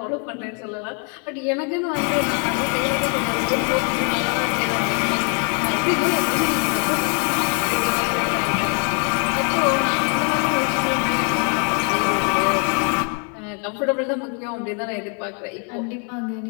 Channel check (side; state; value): right; quieter; 39.8 dB